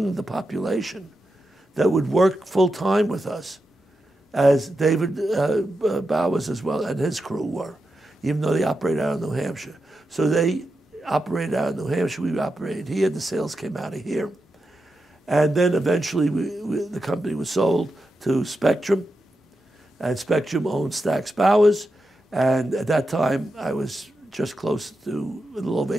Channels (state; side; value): normal; both; correlation 0.88